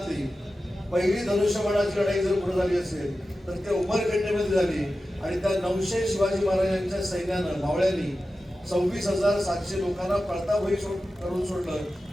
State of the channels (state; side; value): normal; both; correlation 0.93